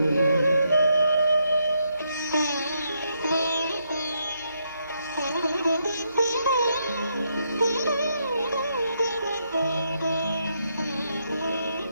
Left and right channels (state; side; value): inverted; both; correlation -0.78